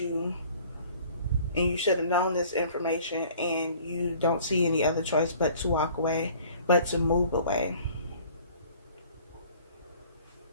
and you should have known this information, and you don't see any other choice but to walk away, but to move away.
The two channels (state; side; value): inverted; both; correlation -0.51